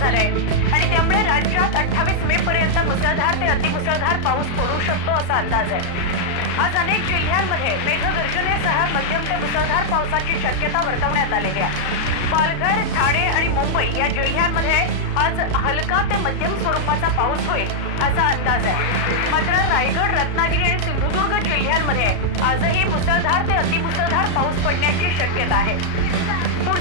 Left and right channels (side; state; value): right; late; 34 ms